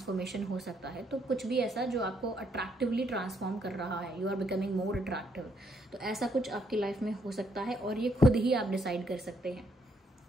हो सकता है। तो कुछ भी ऐसा जो आपको अट्रैक्टिवली ट्रांसफॉर्म कर रहा है, you are becoming more attractive, तो ऐसा कुछ आपकी लाइफ में हो सकता है, और ये खुद ही आप डिसाइड कर सकते हैं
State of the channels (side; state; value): both; normal; correlation 0.73